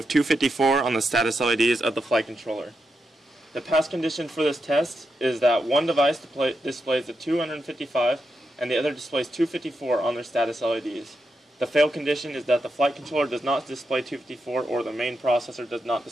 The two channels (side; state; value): both; normal; correlation 0.85